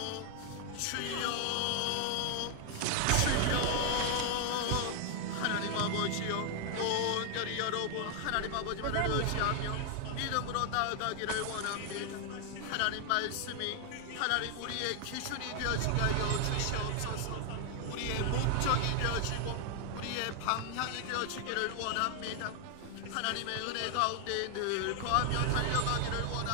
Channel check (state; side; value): different; both; correlation 0.00